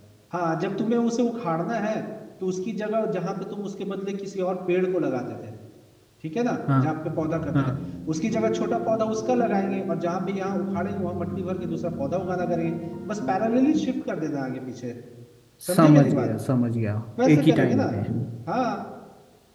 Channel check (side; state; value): both; identical; correlation 1.00